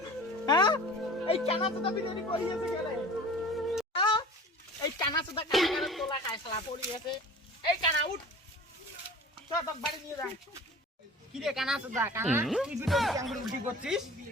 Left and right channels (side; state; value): both; normal; correlation 0.42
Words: হ্যাঁ এই কানা সুদা বিরিয়ানি করিয়েছে গেলে এই কানা সুদা কানা তোলা খায় শালা পড়িয়েছে এই কানা উঠ চল তোর বাড়ি নিয়ে যা কি রে কানা সুদা কানা কি ভিডিও আঙ্গুল উল্টি করছিস